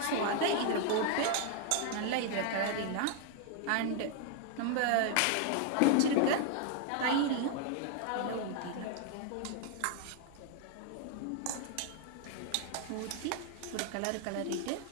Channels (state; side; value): different; both; correlation 0.00